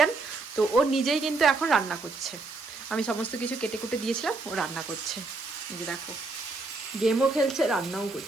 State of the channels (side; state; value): left; quieter; 3.6 dB